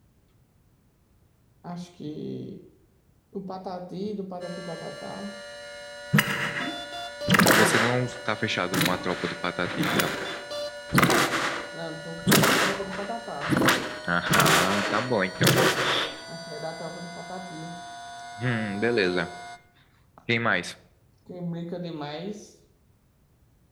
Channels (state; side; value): identical; both; correlation 1.00